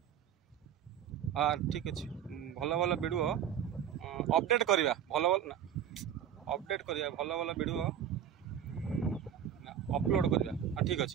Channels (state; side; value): quieter; left; 9.6 dB